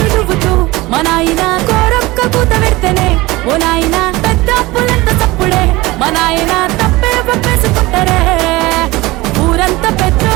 దువ్వుతూ మా నాయన కోరొక్క కూత పెడితేనే ఓ నాయన పెద్ద అప్పులంత తప్పుడే మా నాయన తప్పే ఒప్పేసుకుంటారే ఊరంతా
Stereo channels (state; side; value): quieter; left; 20.6 dB